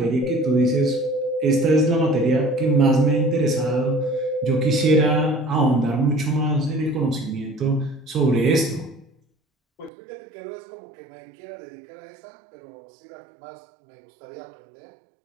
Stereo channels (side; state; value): left; drops out; at 9.9 s